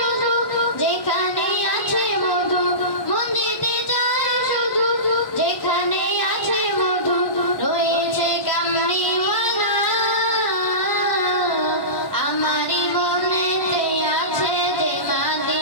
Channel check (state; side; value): late; right; 1.1 ms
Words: যেখানে আছে মধু, মন যেতে চায় শুধু যেখানে আছে মধু। রয়েছে কামড়িওয়ালা আমারি মনেতে আছে যে